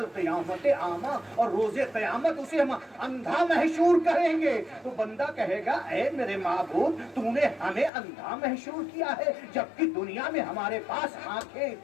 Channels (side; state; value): right; drops out; at 7.9 s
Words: اعمی، اور روز قیامت اسے ہم اندھا محشور کریں گے۔ تو بندہ کہے گا اے میرے معبود، تو نے ہمیں اندھا محشور کیا ہے جبکہ دنیا میں ہمارے پاس آنکھیں